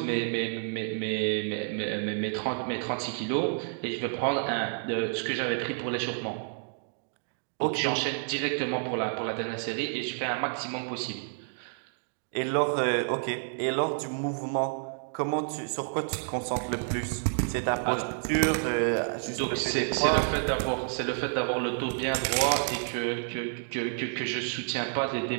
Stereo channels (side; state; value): left; silent; digital silence